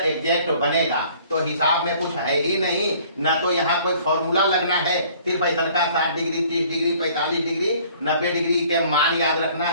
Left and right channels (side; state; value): both; inverted; correlation -0.55